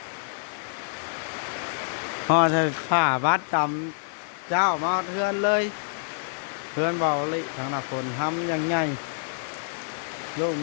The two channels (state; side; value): silent; right; digital silence